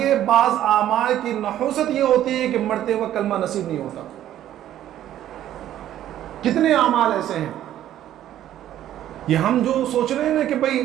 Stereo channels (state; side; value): quieter; left; 12.1 dB